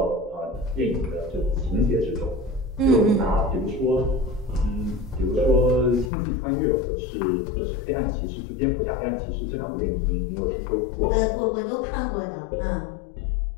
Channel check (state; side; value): drops out; right; at 6.1 s